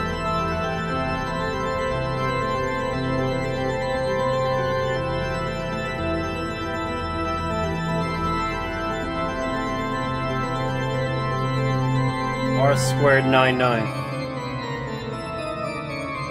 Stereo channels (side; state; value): both; identical; correlation 1.00